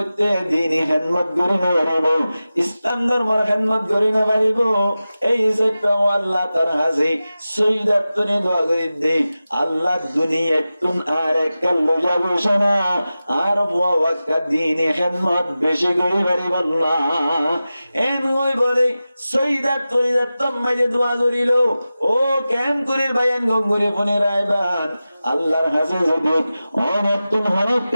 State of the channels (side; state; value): both; inverted; correlation -0.95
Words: দিনই হিম্মত করি না পারিব ইসলাম ধর্মের হিম্মত করি না পারিব এই যে আল্লাহ তার হাসি সৈয়দাতনে দোয়া করে দে আল্লাহ দুনিয়া তুন আর একল যাবো শোনা আর বুয়া ওয়াক্কা দিনই হিম্মত বেশি করি পারিব না এন ওই বলে সৈয়দাতনে দত্তম মাঝে দোয়া করিল ও কেন করে বায়ান গঙ্গুরে ফোনে রায়বান আল্লাহর কাছে যদি অনতুন